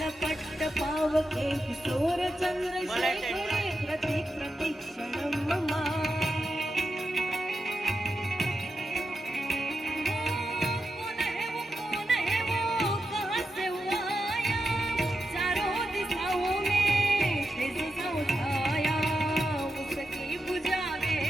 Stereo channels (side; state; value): both; normal; correlation 0.88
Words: पट्ट पावके किशोर चंद्रशेखरे प्रतिक्षणं मम